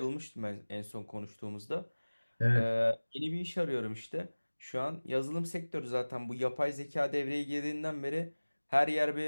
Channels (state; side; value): inverted; both; correlation -1.00